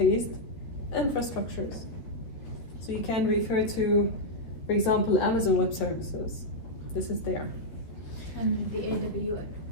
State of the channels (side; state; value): right; late; 13 ms